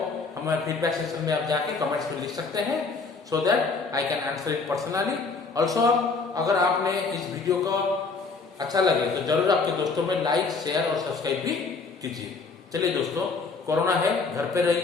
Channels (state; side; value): quieter; right; 4.3 dB